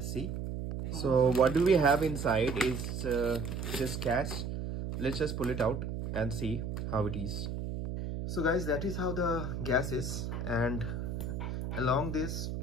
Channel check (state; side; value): noise; right; hum, 4 dB below the sound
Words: see. So what do we have inside is just gas. Let's just pull it out and see how it is. So guys, that is how the gas is, and along this